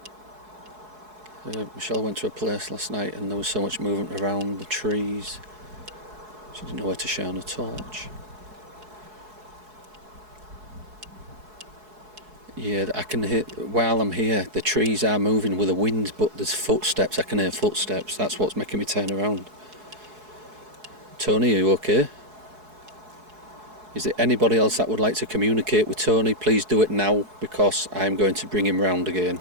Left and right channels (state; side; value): late; left; 4.7 ms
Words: Michelle went to a place last night and there was so much movement around the trees. She didn't know where to shine a torch. Yeah, I can hear, while I'm here, the trees are moving with the wind, but there's footsteps. I can hear footsteps. That's what's making me turn around. Tony, are you okay? Is there anybody else that would like to communicate with Tony? Please do it now, because I'm going to bring him round again.